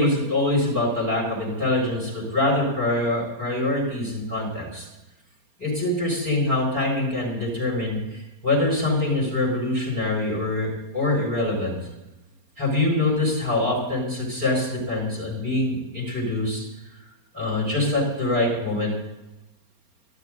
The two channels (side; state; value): left; late; 4.3 ms